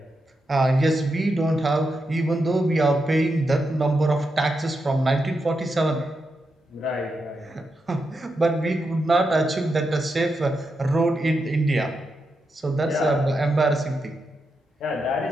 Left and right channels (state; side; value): normal; both; correlation 0.86